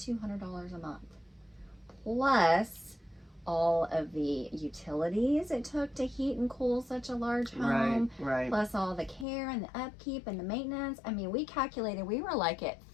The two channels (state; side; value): drops out; right; at 9.2 s